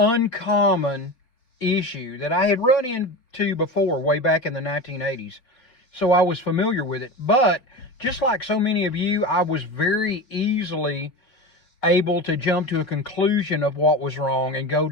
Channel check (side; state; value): right; late; 3.9 ms